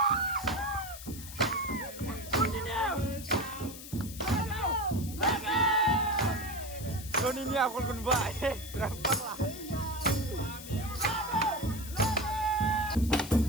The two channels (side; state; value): left; noise; hiss, 13 dB below the sound